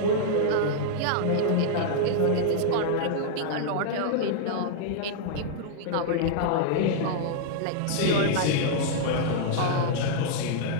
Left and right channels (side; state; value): both; different; correlation -0.01